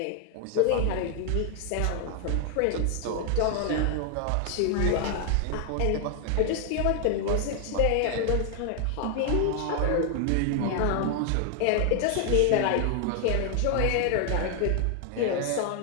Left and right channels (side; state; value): both; different; correlation 0.00